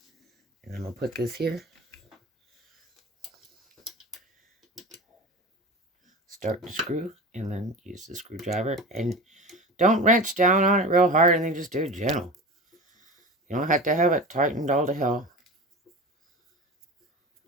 And I'm going to put this here. Start the screw and then use the screwdriver. And don't wrench down on it real hard and then just do it gentle. You don't have to have it tightened all to hell.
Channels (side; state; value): both; normal; correlation 0.31